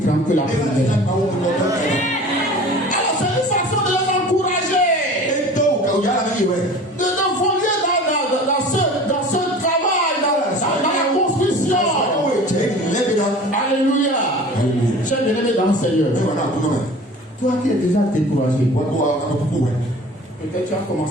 que la première. Alors c'est une façon de les encourager, de nous voler dans ce travail, dans la construction. Alléluia. J'ai bien aimé dans le Seigneur. Toi qui es déjà découragé, Peut-être tu as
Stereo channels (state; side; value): normal; both; correlation 0.41